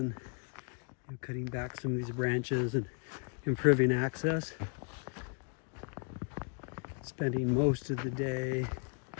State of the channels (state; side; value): quieter; right; 39.5 dB